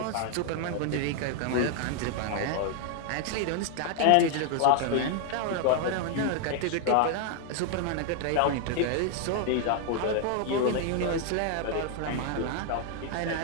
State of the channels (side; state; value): both; different; correlation 0.00